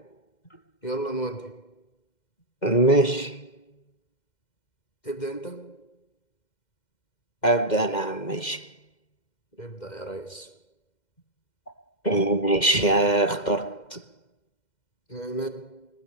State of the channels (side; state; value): right; late; 2.1 ms